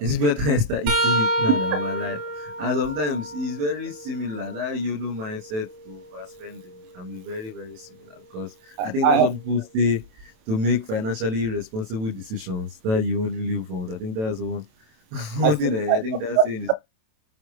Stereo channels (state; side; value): late; left; 27 ms